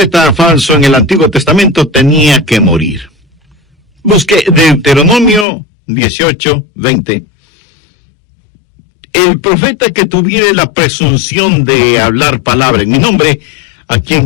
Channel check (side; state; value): right; drops out; at 5.5 s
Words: falso en el Antiguo Testamento tenía que morir. Busque Deuteronomio 18:20. El profeta que tuviere la presunción de hablar palabra en mi nombre, a